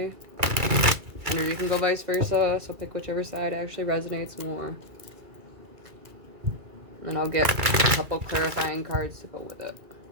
Or you can go vice versa, so pick whichever side actually resonates more. And I'll get a couple clarifying cards to go with it.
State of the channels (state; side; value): late; left; 2.3 ms